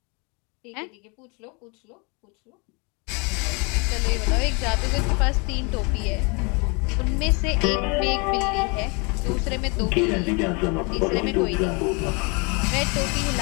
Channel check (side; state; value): right; quieter; 31.4 dB